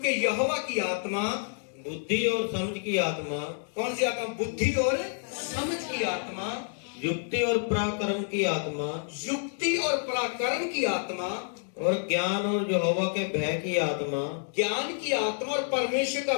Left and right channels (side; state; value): right; silent; 59 dB below the other